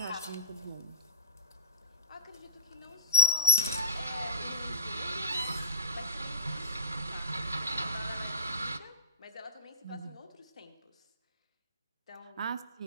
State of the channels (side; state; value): both; inverted; correlation -0.32